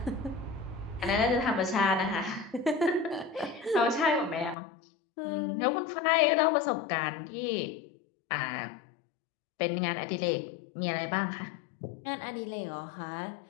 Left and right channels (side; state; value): right; drops out; at 4.5 s